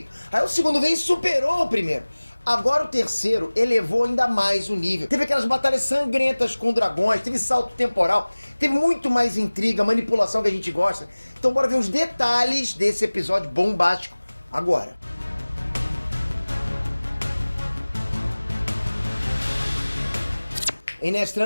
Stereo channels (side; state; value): both; inverted; correlation -1.00